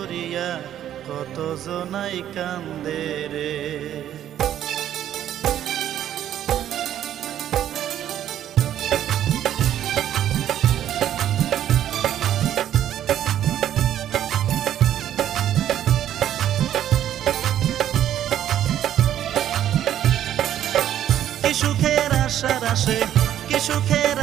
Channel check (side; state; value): left; quieter; 11.1 dB